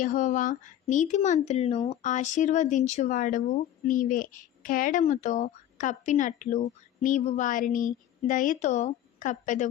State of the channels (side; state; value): right; quieter; 11.6 dB